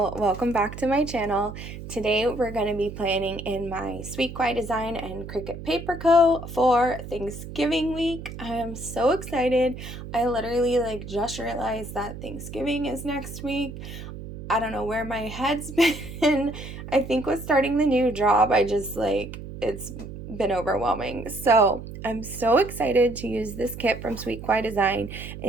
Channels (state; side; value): noise; right; hum, 11 dB below the sound